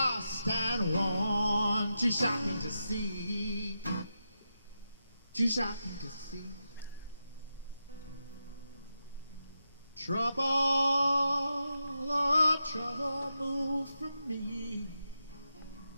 and worn. Too shocking to see, too shocking to see. Trouble, oh trouble, move from me.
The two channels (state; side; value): inverted; both; correlation -0.88